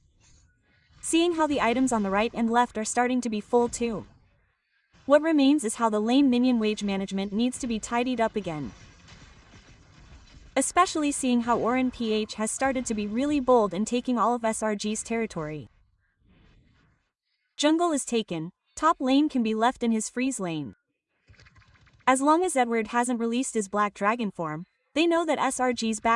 Seeing how the items on the right and left are starting to be full too. What remains is how the lane minion wage management needs to be tidied up again. Especially seeing how Oren PH has started to be really bold in taking all of SRG's territory. Jungle is taken, top lane can be left in his freeze lane. As long as Edward hasn't released his Black Dragon form, they know that SRG's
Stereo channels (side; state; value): both; identical; correlation 1.00